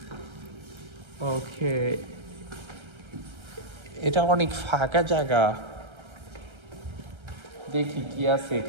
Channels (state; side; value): late; left; 1.3 ms